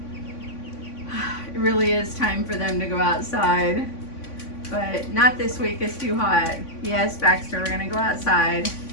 it really is time for them to go outside. but not this week. It's too hot. Yes, Baxter, we're gonna go outside.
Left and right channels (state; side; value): late; right; 3.5 ms